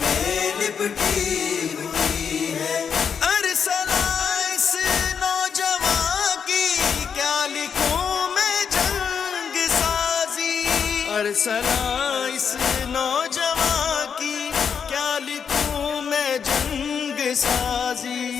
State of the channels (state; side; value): quieter; right; 6.9 dB